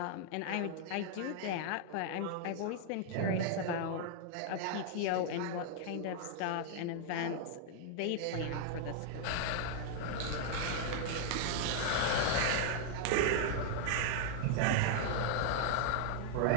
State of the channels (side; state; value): both; different; correlation 0.00